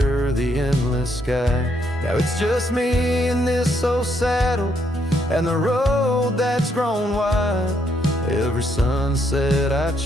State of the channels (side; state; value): both; normal; correlation 0.74